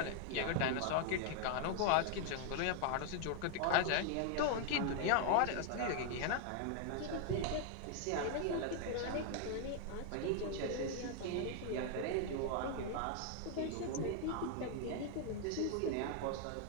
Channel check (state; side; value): different; both; correlation 0.00